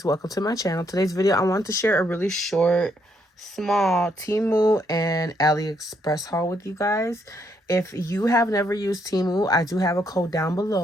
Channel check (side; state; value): both; normal; correlation 0.74